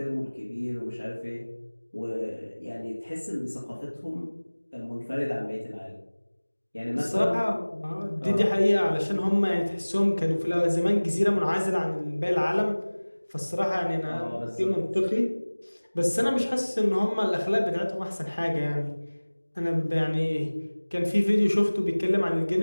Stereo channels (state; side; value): inverted; both; correlation -1.00